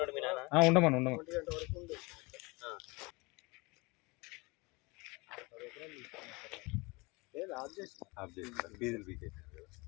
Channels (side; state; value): right; quieter; 26.1 dB